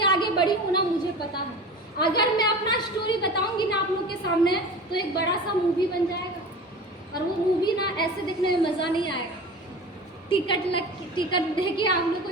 आगे बढ़ी हूँ ना, मुझे पता है। अगर मैं अपना स्टोरी बताऊंगी ना आप लोग के सामने तो एक बड़ा सा मूवी बन जाएगा, और वो मूवी ना ऐसे देखने में मज़ा नहीं आएगा। टिकट देखिए आप लोग को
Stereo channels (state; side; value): normal; both; correlation 0.35